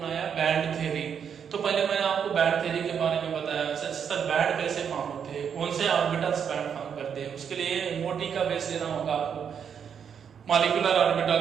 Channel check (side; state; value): left; quieter; 7.6 dB